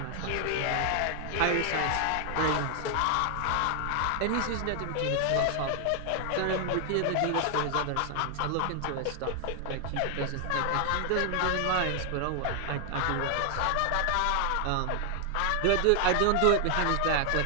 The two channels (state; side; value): different; both; correlation 0.00